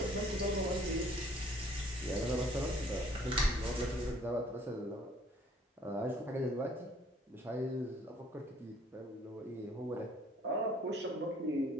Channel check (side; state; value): both; normal; correlation 0.58